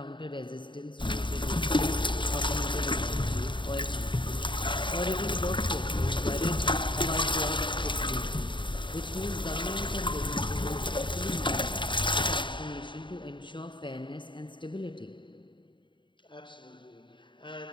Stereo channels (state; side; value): late; right; 0.23 ms